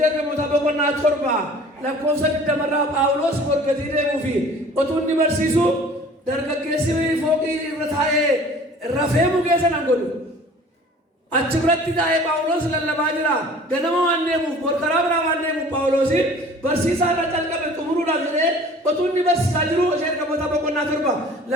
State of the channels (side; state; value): both; normal; correlation 0.47